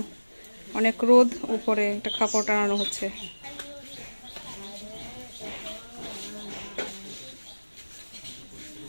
অনেক রোদ উপরে একটা কাপড় টানানো হচ্ছে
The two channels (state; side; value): inverted; both; correlation -1.00